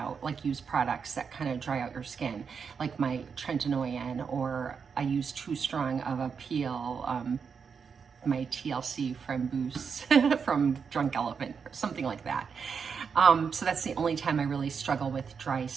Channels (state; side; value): quieter; left; 6.1 dB